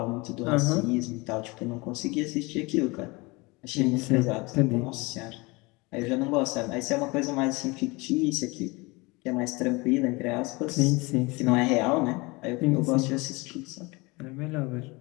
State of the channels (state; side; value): quieter; right; 25.1 dB